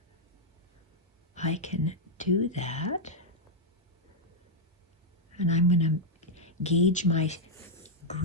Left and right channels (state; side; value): normal; both; correlation -0.03